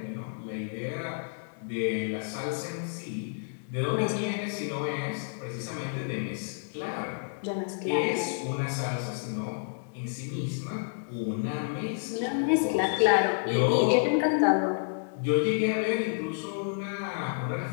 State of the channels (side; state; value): right; silent; digital silence